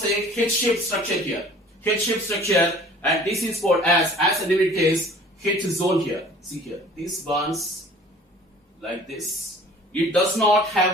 a H-shaped structure here. H-shaped structure, and this is called as the name indicates, H zone here. See here, this bonds like this. It does not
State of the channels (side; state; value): both; normal; correlation 0.49